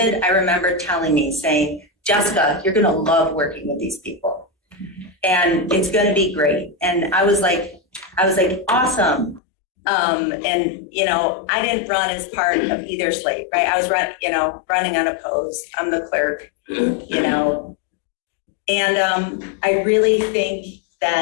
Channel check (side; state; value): right; drops out; at 9.4 s